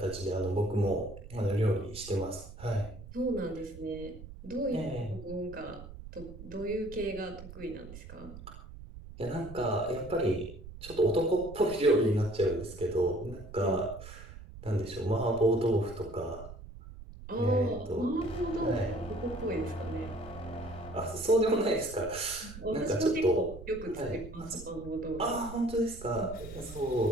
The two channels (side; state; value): right; noise; rumble, 14 dB below the sound